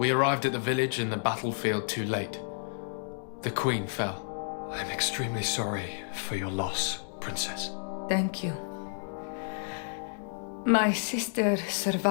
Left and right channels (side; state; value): right; silent; digital silence